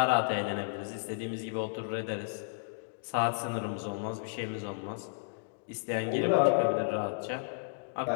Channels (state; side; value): silent; right; digital silence